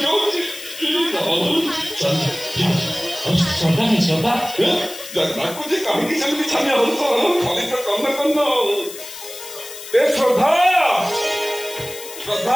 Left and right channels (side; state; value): left; noise; hiss, 13 dB below the sound